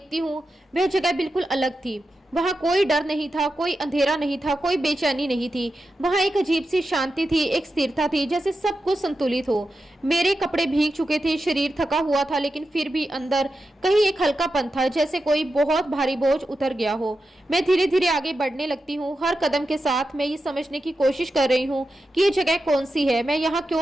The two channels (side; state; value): both; normal; correlation 0.90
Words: हूँ, वह जगह बिल्कुल अलग थी। वहाँ कोई डर नहीं था, कोई अंधेरा नहीं था, कोई बेचैनी नहीं थी। वहाँ एक अजीब सी शांति थी, एक स्थिरता थी, जैसे सब कुछ संतुलित हो। मेरे कपड़े भीग चुके थे, शरीर थका हुआ था, लेकिन फिर भी अंदर कहीं एक हल्कापन था, जैसे कोई बहुत भारी बोझ उतर गया हो। मैं धीरे धीरे आगे बढ़ने लगती हूँ। हर कदम के साथ मैं ये समझने की कोशिश कर रही हूँ कि ये जगह कौन सी है, मैं यहाँ